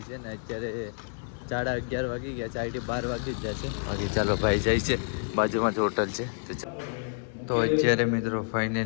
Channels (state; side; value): silent; right; digital silence